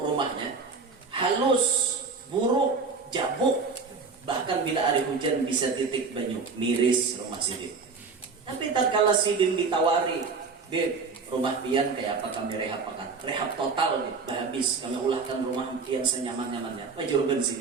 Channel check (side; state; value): left; quieter; 4.7 dB